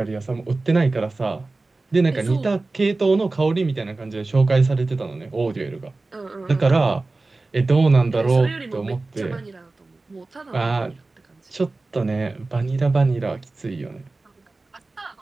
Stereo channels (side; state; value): left; quieter; 3.3 dB